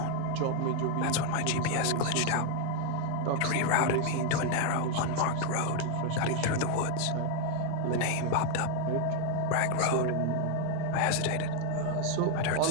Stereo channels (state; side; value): different; both; correlation 0.00